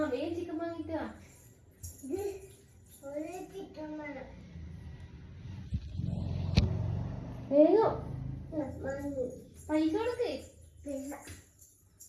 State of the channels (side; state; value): both; identical; correlation 1.00